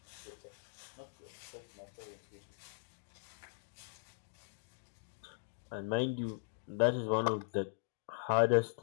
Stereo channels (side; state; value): right; silent; digital silence